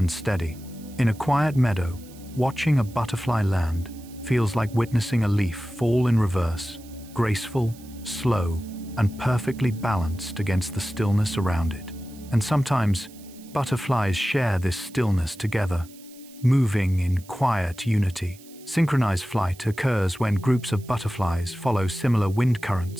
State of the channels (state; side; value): noise; right; hiss, 23 dB below the sound